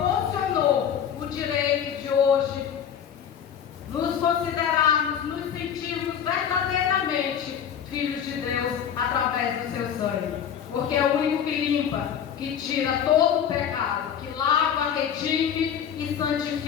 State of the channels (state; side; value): quieter; right; 8.5 dB